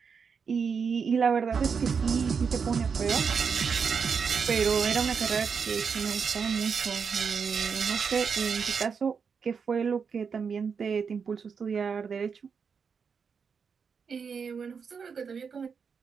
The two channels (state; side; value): quieter; left; 6.0 dB